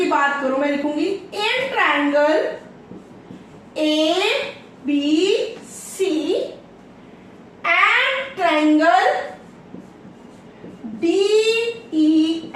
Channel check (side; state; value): both; identical; correlation 1.00